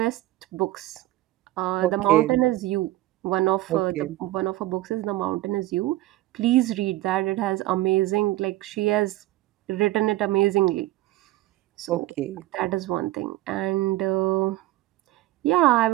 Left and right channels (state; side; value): quieter; left; 16.7 dB